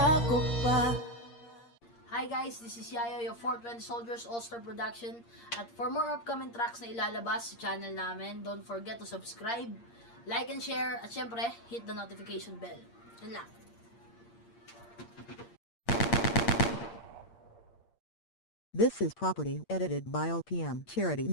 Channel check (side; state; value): right; late; 8.6 ms